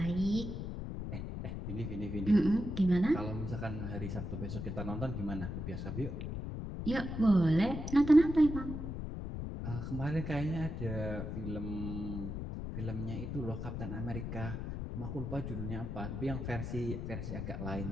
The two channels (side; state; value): left; noise; rumble, 5 dB below the sound